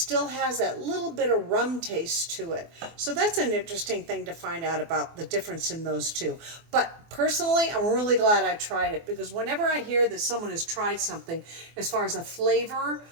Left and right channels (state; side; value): late; left; 24 ms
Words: has that little bit of rum taste to it. So that's an interesting thing to find out about the difference in those two. But personally, I'm really glad I tried it, because whenever I hear that someone has tried something as far as a flavor